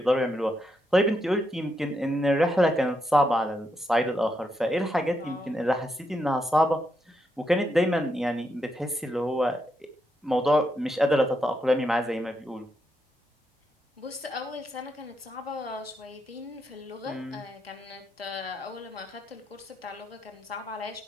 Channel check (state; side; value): normal; both; correlation 0.81